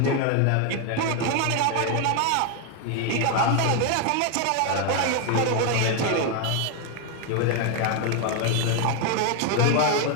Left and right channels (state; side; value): different; both; correlation 0.01